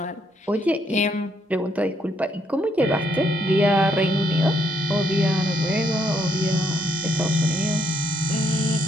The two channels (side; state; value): both; normal; correlation 0.73